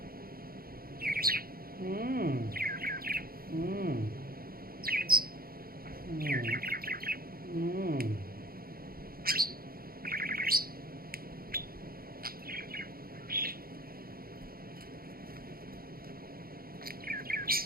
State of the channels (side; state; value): left; late; 0.43 ms